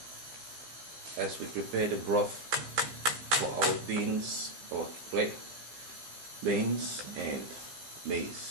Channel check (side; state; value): left; late; 16 ms